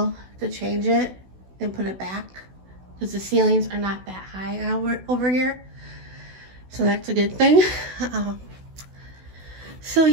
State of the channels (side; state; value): left; late; 16 ms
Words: to change it and put it back, because the ceilings are not that high over here. So that's a good thing. So